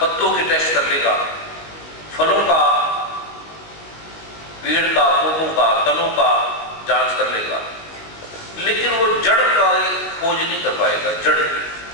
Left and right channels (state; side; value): late; right; 19 ms